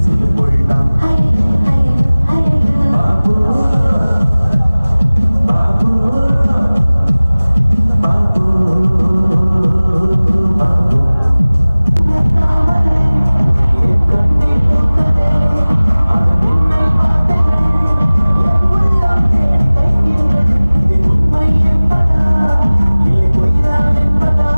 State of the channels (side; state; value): both; inverted; correlation -0.99